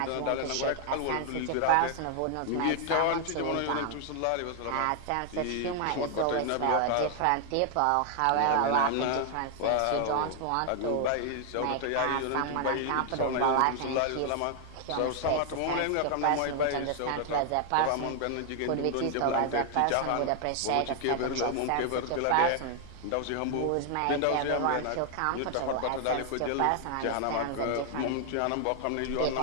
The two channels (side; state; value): both; different; correlation 0.00